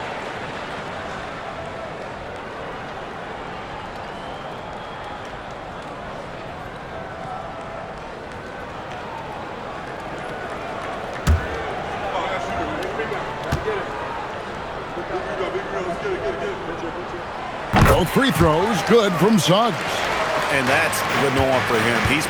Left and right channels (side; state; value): both; identical; correlation 1.00